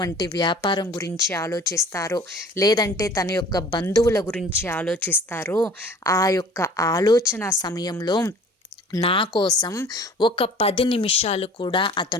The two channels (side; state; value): both; normal; correlation 0.47